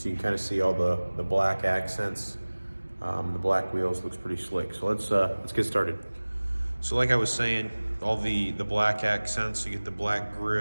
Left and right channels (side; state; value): both; inverted; correlation -1.00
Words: you can kind of see all the black accents. The black wheels looks pretty slick. So let's get started. So like I was saying, all the black accents, you get the black